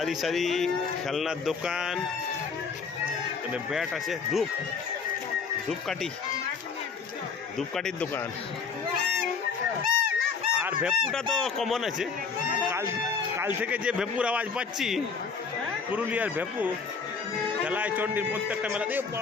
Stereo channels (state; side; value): quieter; right; 5.5 dB